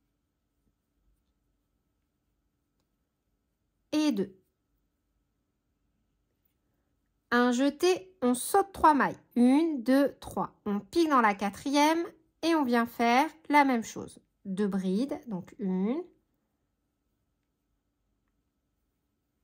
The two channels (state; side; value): identical; both; correlation 1.00